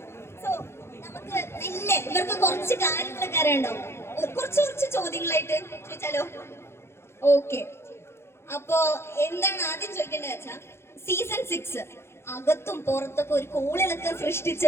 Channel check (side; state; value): right; late; 0.12 ms